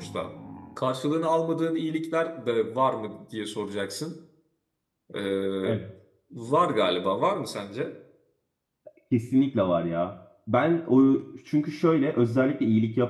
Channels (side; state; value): both; identical; correlation 1.00